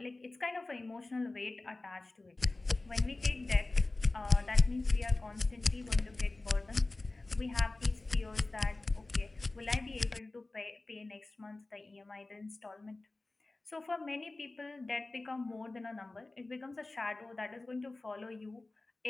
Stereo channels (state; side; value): quieter; right; 3.1 dB